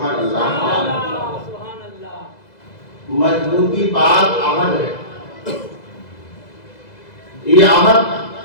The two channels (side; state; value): right; late; 2.0 ms